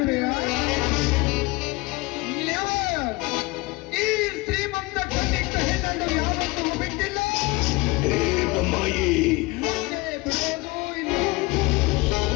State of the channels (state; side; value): quieter; right; 23.2 dB